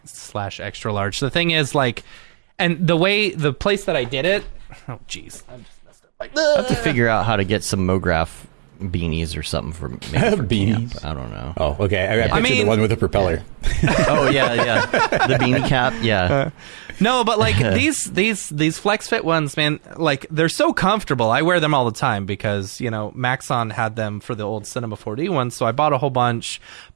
large. The thing is and the place that I did it, I just messed up. I have to figure out how to get some Mograph beanies or something for making for Beanies? camp. I don't know. Oh, okay. I pictured mean- the one with the propeller. Oh yeah, the beanie cap. Yeah, No, but like these Flex Fit ones, man, like they're so comfortable. I wear them all the time because, you know, Maxon had them for the old Cinema 4D ones, so I bought a whole bunch.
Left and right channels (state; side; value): silent; left; digital silence